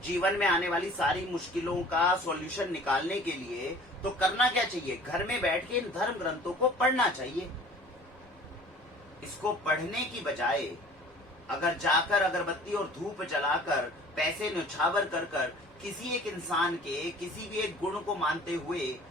जीवन में आने वाली सारी मुश्किलों का सॉल्यूशन निकालने के लिए, तो करना क्या चाहिए, घर में बैठ के इन धर्म ग्रंथों को पढ़ना चाहिए। इसको पढ़ने की बजाय अगर जाकर अगरबत्ती और धूप जलाकर पैसे न्यौछावर कर कर किसी एक इंसान के किसी भी एक गुण को मानते हुए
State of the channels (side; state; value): both; normal; correlation 0.48